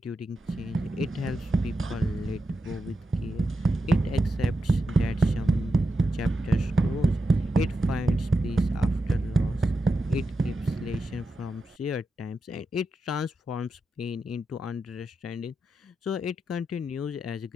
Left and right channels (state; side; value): normal; both; correlation 0.88